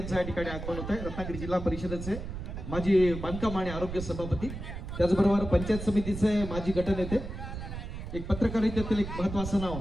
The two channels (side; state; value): right; noise; rumble, 8 dB below the sound